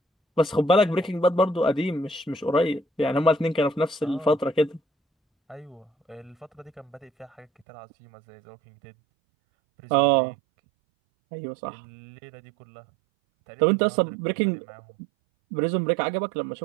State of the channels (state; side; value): drops out; left; at 7.7 s